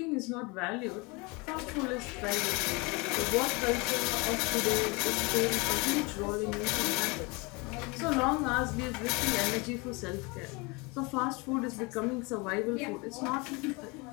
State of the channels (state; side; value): quieter; right; 27.5 dB